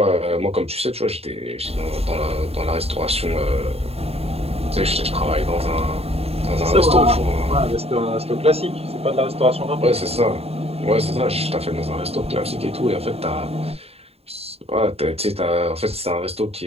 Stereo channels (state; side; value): late; left; 0.29 ms